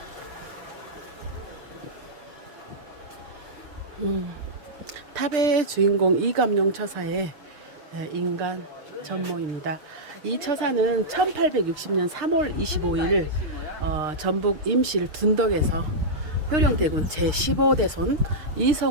탑의 주인공 이감룡 처사의 인간 전모입니다. 이 처사는 1860년 3월 25일 전북 임실 둔덕에서 효령대군 제15대손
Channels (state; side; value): late; left; 6.6 ms